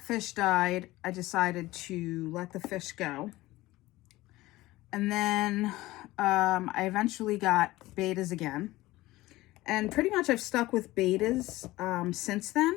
fish died, I decided to let the fish go. And then I eventually got betas again. And pretty much I've stuck with betas since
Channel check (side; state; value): right; quieter; 18.3 dB